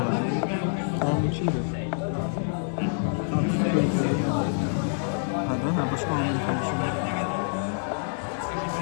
Tamam içiydi. Hadi başka Amin konuşuyor.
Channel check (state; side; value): silent; right; 60 dB below the other